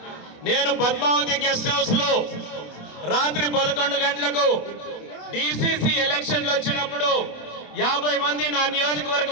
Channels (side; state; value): right; late; 27 ms